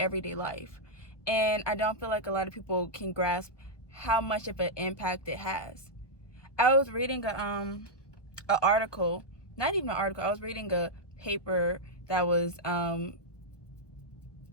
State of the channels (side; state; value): right; late; 1.1 ms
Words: life. And I don't feel like a lot of people can grasp how much of an impact it has. I was reading an article, not even an article, I was reading a paper that was